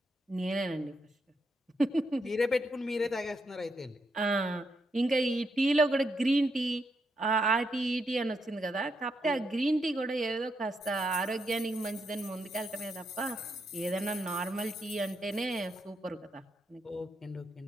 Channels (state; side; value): normal; both; correlation 0.80